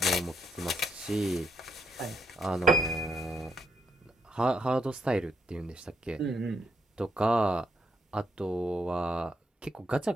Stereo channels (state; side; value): normal; both; correlation 0.76